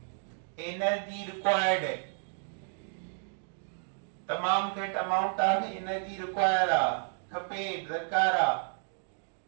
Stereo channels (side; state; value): left; silent; 57 dB below the other